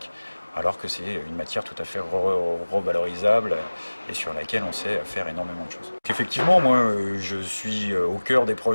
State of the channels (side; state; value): both; inverted; correlation -1.00